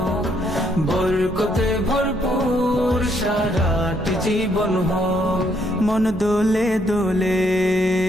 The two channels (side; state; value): both; normal; correlation 0.72